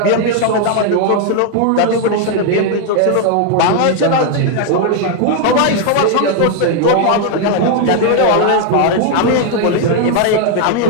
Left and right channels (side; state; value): both; different; correlation 0.00